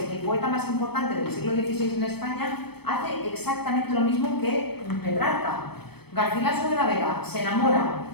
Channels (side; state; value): right; late; 0.97 ms